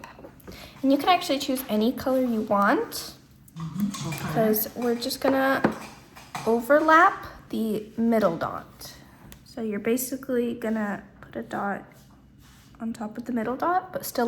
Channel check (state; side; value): identical; both; correlation 1.00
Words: And you can actually choose any color you want, Okay. because we're just gonna overlap the middle dot. So you're basically gonna put a dot on top of the middle dot, but